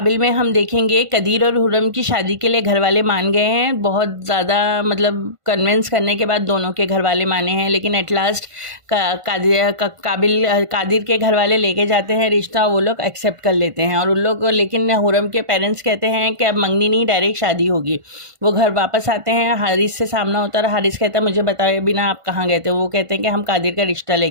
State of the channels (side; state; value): left; late; 1.5 ms